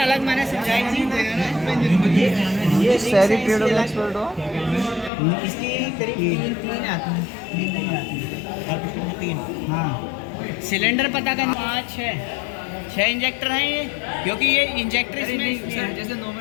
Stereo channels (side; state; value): right; drops out; at 5.1 s